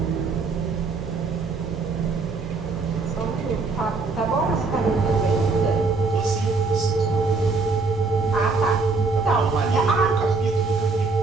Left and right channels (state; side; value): quieter; left; 4.1 dB